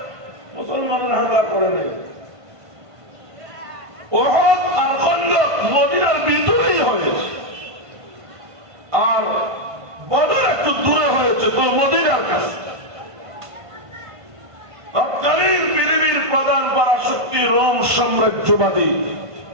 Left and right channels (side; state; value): left; late; 1.5 ms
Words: মুসলমানরা হামলা করেনি। ওহদ আর খন্দক মদিনার ভিতরেই হয়েছে, আর বদর একটু দূরে হয়েছে তো মদিনার কাছে। তৎকালীন পৃথিবীর প্রধান পরাশক্তি রোম সাম্রাজ্যবাদী,